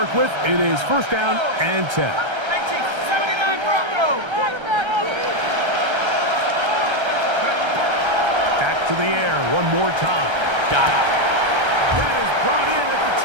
with. It is 1st down and 10. 79 Broncos. Back to the air one more time. Got it. That is brought in at the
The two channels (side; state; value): left; late; 1.3 ms